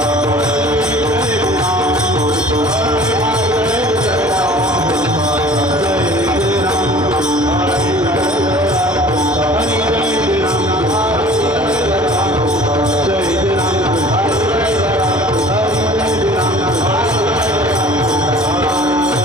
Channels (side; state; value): both; normal; correlation 0.47